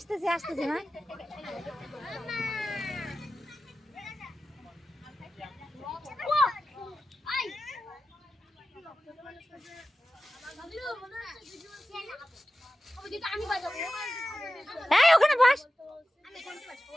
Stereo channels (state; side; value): normal; both; correlation 0.94